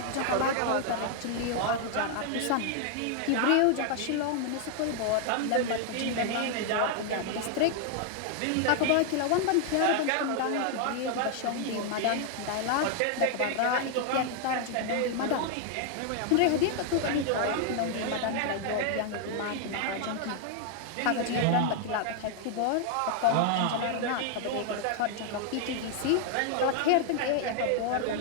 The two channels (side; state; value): both; different; correlation 0.00